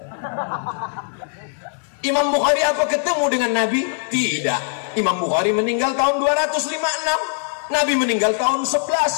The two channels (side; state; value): right; silent; digital silence